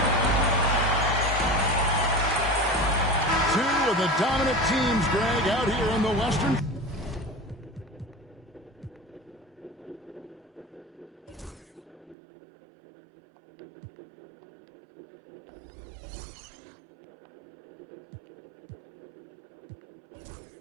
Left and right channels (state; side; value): drops out; left; at 12.2 s